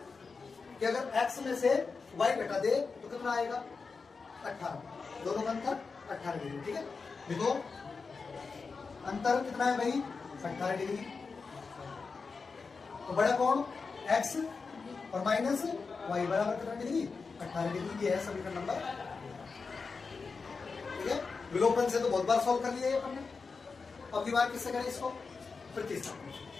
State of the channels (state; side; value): quieter; right; 4.7 dB